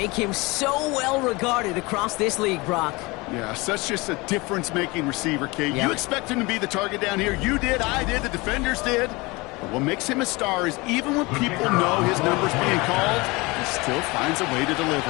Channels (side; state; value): right; quieter; 24.2 dB